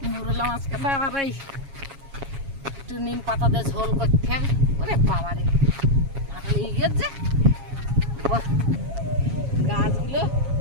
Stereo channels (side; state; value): left; late; 7.3 ms